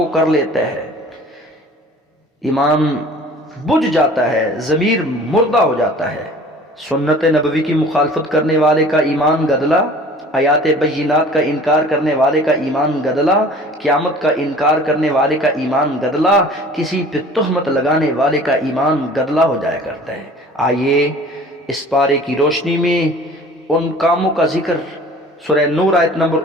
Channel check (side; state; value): both; normal; correlation 0.46